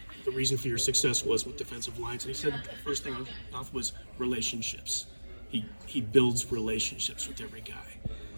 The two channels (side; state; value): both; inverted; correlation -1.00